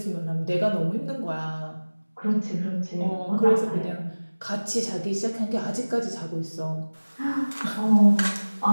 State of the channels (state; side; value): inverted; both; correlation -1.00